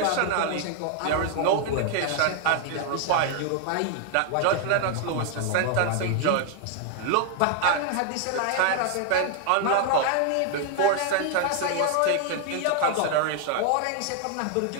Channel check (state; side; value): different; both; correlation 0.00